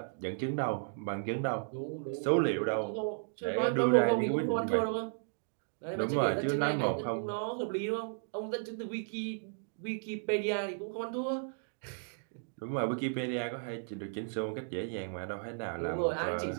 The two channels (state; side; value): silent; left; digital silence